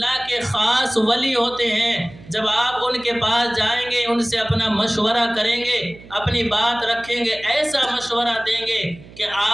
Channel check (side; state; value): right; noise; hum, 20 dB below the sound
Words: کے خاص ولی ہوتے ہیں، جب آپ ان کے پاس جائیں گے، ان سے اپنا مشورہ کریں گے، اپنی بات رکھیں گے، ایسا مشورہ دیں گے کہ